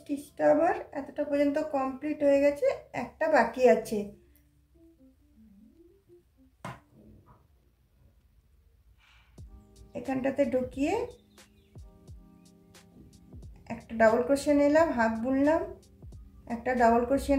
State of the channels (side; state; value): both; identical; correlation 1.00